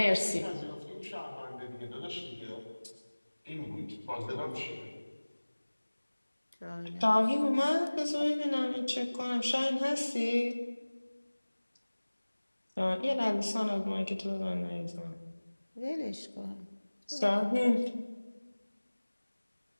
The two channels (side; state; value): both; inverted; correlation -1.00